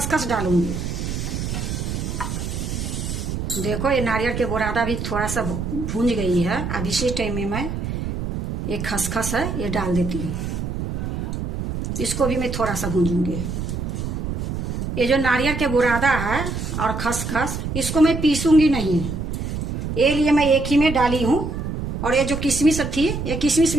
डालूंगी। देखो, ये नारियल के बुरादा भी थोड़ा सा भून गई है। अब इसी टाइम में मैं ये खसखस है ये डाल देती हूँ। इसको भी मैं थोड़ा सा भूनूंगी। ये जो नारियल के बुरादा है और खसखस, इसको मैं पीसूंगी नहीं, ये लिए मैं एक ही में डाली हूँ। और ये जो किशमिश थी, ये किशमिश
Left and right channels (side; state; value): right; noise; rumble, 4 dB below the sound